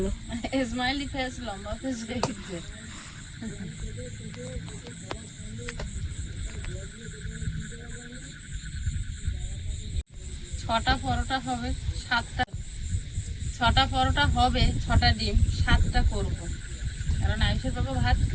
স্মাইলি ফেস লম্বা ফেস হয়ে গেছে। ছটা পরোটা হবে, 6টা পরোটা হবে, 6টা ডিম, 7টা করবো। কারণ আয়ুষের বাবা ভাত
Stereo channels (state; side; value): identical; both; correlation 1.00